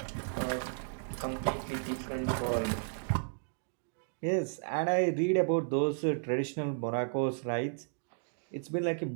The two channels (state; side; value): silent; left; digital silence